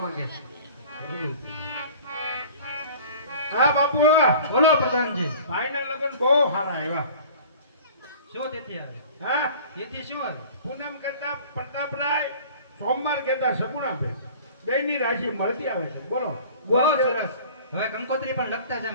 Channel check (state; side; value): inverted; both; correlation -0.45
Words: માંગે. હા બાપુ બોલો પ્રધાનજી. ભાઈના લગ્ન બહુ સારા આવ્યા. શું તિથિ આવે? હા તિથિ શું આવે? પૂનમ કહેતા પ્રતાપરાય, સોમવાર કહેતા સગુણાભાઈ. બેની રાશિ મળતી આવે છે. બોલો બહુ સરસ. હવે કંકોત્રી પણ લખતા છે